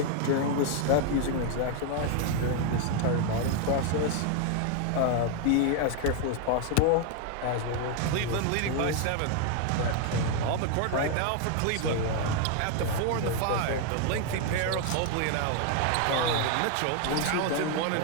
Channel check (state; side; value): different; both; correlation 0.01